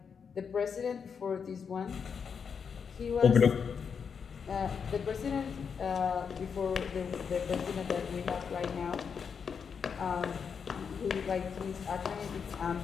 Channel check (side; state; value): right; quieter; 6.4 dB